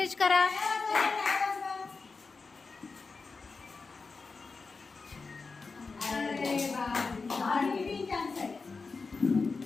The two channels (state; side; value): quieter; right; 4.3 dB